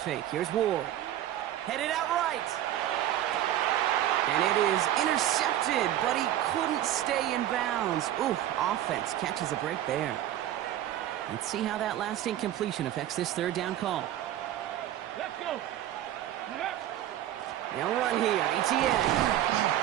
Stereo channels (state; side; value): quieter; left; 12.5 dB